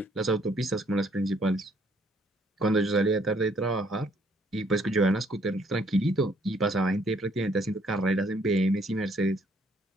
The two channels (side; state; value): both; normal; correlation 0.65